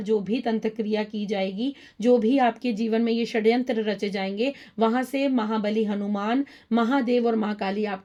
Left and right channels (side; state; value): both; identical; correlation 1.00